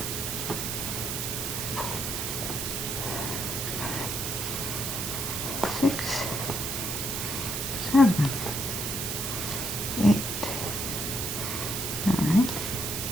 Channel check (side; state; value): right; noise; hiss, 2 dB below the sound